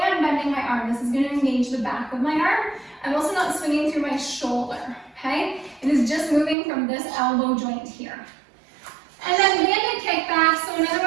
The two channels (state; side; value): drops out; left; at 6.6 s